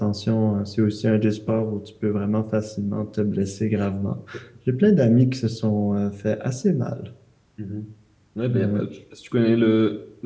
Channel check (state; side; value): identical; both; correlation 1.00